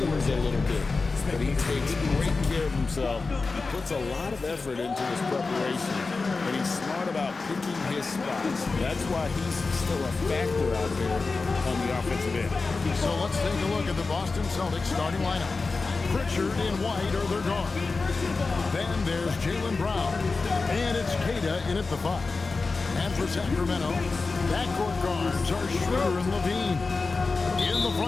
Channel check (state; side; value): quieter; right; 4.0 dB